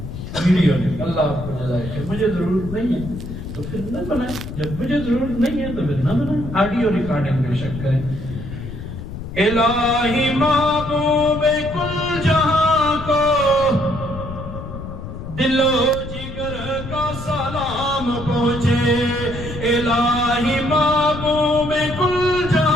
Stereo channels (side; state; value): left; noise; rumble, 9 dB below the sound